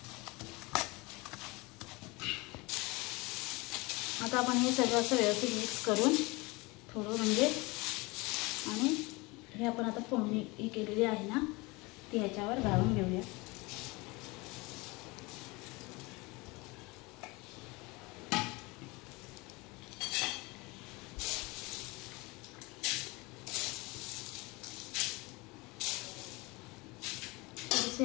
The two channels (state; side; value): quieter; right; 24.8 dB